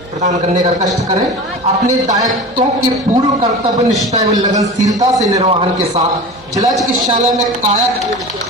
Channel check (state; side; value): normal; both; correlation 0.33